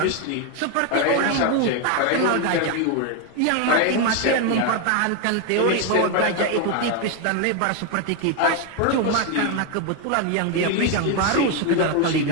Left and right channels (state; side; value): different; both; correlation 0.02